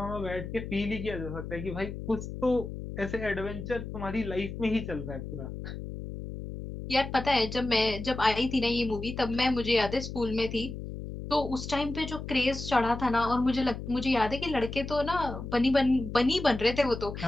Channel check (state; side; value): noise; left; hum, 8 dB below the sound